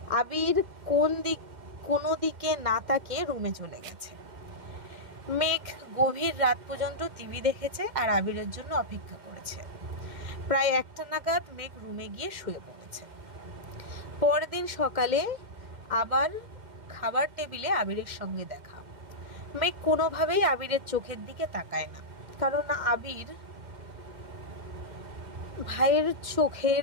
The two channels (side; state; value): left; late; 2.1 ms